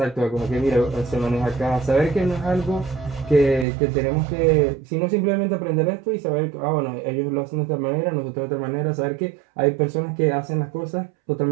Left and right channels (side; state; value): left; drops out; at 3.7 s